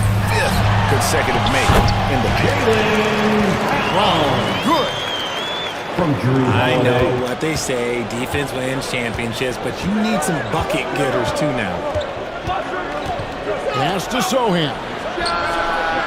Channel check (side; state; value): both; identical; correlation 1.00